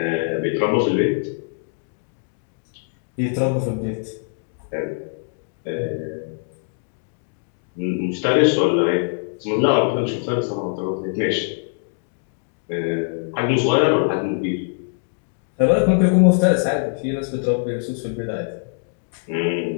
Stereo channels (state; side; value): silent; right; digital silence